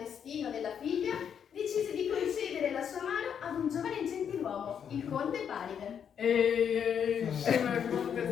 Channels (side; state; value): right; quieter; 8.0 dB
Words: della figlia, decise di concedere la sua mano ad un giovane gentiluomo, il conte Paride. Ehi, sono il conte